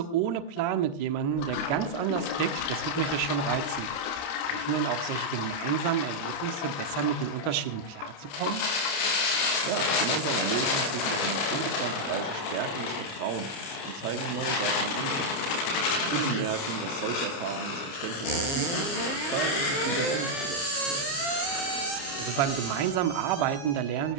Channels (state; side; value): late; right; 29 ms